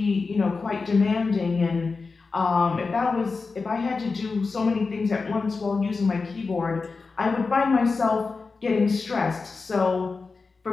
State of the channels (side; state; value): right; quieter; 4.3 dB